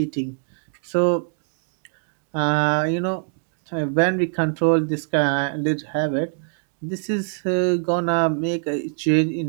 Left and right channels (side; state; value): left; silent; digital silence